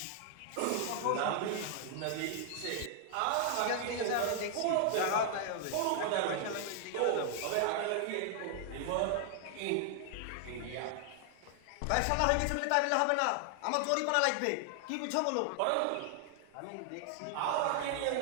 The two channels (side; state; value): both; different; correlation 0.00